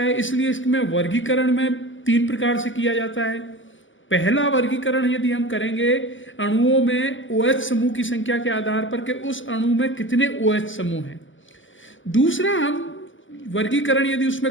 इसलिए इसमें वर्गीकरण में 3 प्रकार से किया जाता है। पहला वर्गीकरण यदि हम करेंगे अणुओं में OH समूह की संख्या के आधार पर कि उस अणु में कितने OH समूह हैं। दूसरा हम वर्गीकरण यदि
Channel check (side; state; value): right; late; 0.56 ms